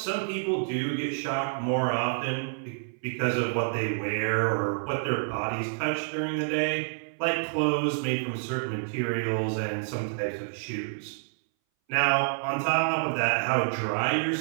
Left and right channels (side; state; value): left; silent; 59 dB below the other